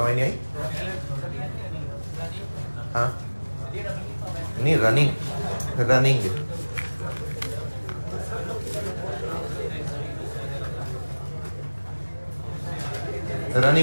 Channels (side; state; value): both; inverted; correlation -1.00